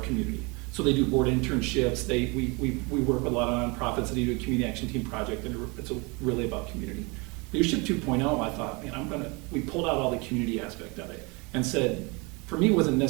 So they do board internships. We work with a lot of nonprofits that do a community action team project, and it's really about community. Leadership 2.0, I thought, man, we pulled out all the community aspect of it and said, for me, it wasn't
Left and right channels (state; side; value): quieter; left; 28.5 dB